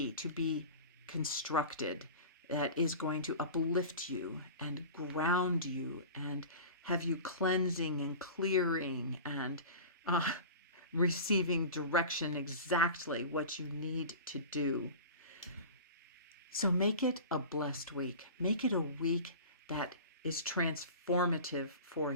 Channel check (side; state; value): both; inverted; correlation -0.35